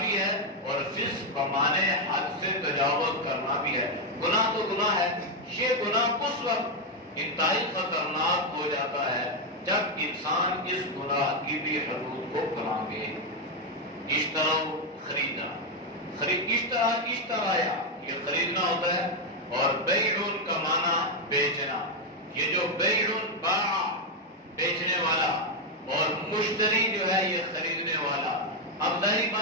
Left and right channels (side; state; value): both; normal; correlation 0.03